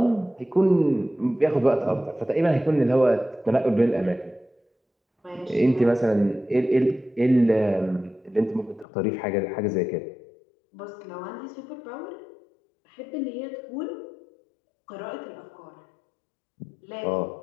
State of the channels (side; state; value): right; drops out; at 8.8 s